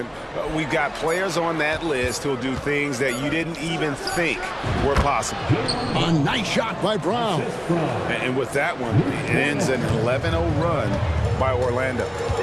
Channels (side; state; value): both; identical; correlation 1.00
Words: We've got players on that list who'll do things that you didn't even think were possible. A nice shot by Brown. And with that one, it ends an 11-0 run by Orlando.